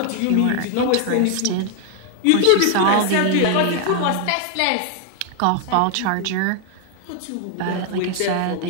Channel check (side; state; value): both; different; correlation 0.00